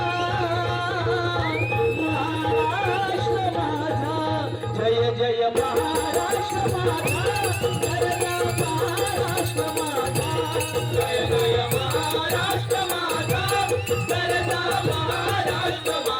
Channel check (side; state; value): both; identical; correlation 1.00